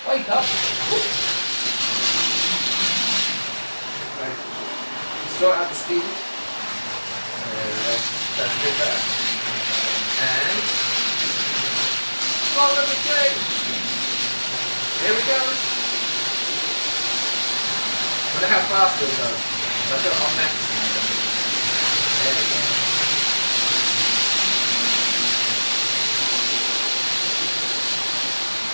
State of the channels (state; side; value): inverted; both; correlation -1.00